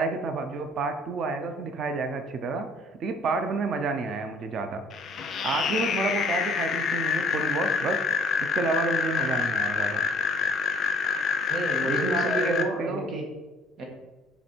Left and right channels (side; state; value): both; normal; correlation 0.58